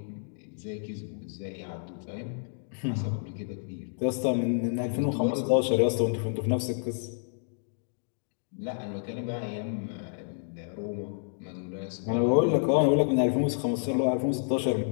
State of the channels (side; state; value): right; silent; digital silence